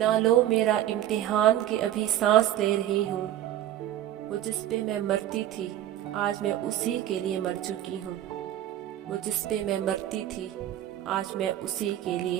लो मेरा इम्तिहान के अभी सांस ले रही हूँ। वो जिस पे मैं मरती थी, आज मैं उसी के लिए मर चुकी हूँ। वो जिस पे मैं मरती थी, आज मैं उसी के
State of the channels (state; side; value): quieter; left; 12.3 dB